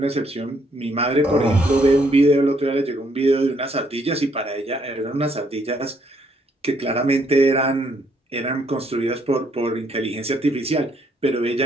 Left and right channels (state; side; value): normal; both; correlation 0.70